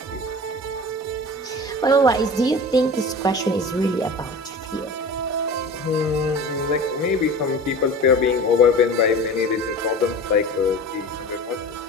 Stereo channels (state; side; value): normal; both; correlation 0.36